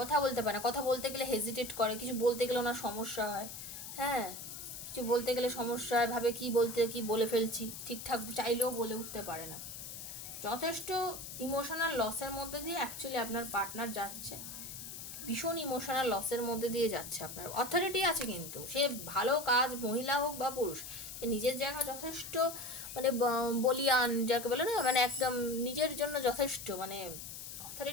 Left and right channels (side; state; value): left; noise; hiss, 10 dB below the sound